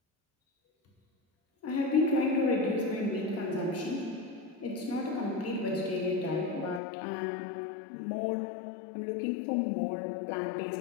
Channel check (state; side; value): drops out; right; at 6.8 s